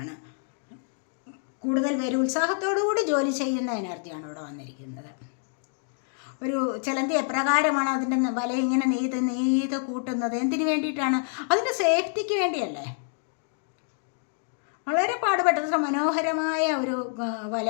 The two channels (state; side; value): silent; right; 60 dB below the other